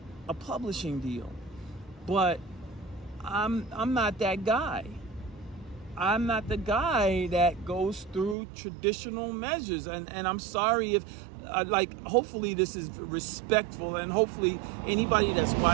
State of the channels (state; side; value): drops out; left; at 8.3 s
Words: a publishing deal. But I'm not that guy. I'm not the guy that goes through traditional measures, and I'm sorry if hopefully this is respectful, and hopefully anybody that's